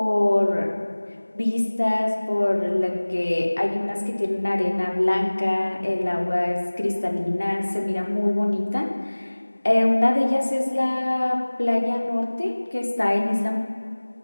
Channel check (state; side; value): inverted; both; correlation -1.00